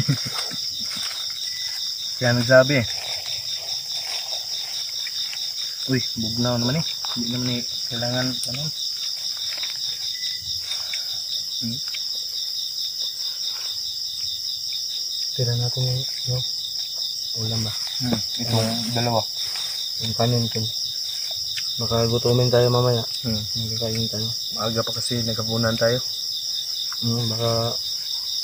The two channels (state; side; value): identical; both; correlation 1.00